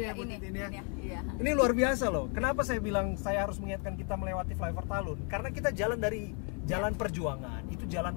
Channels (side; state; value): right; quieter; 38.9 dB